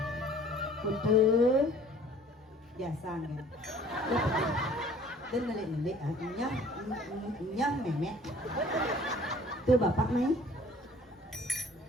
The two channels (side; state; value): both; normal; correlation 0.52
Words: Betul. Biasa kan. Dan nelik-nelik nyah memek. Tuh bapak main.